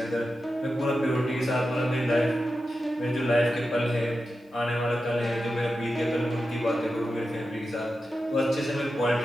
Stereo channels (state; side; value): normal; both; correlation 0.91